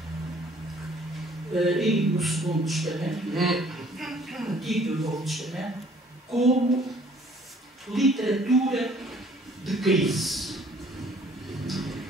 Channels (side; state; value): both; normal; correlation 0.58